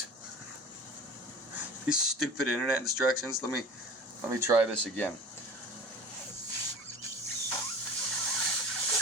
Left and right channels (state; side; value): normal; both; correlation 0.39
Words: These stupid internet instructions. Let me try this again.